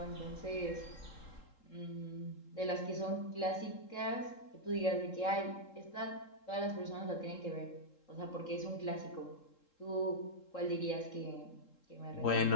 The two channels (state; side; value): late; right; 3.7 ms